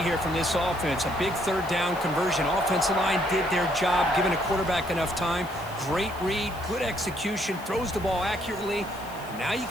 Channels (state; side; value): noise; left; hiss, 20 dB below the sound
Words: here from this offense. A big 3rd down conversion. Offensive line did their job, giving a quarterback enough time. Great read, good execution, throws the ball accurately. And now you